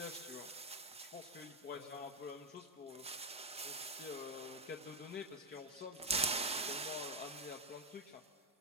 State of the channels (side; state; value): both; normal; correlation 0.04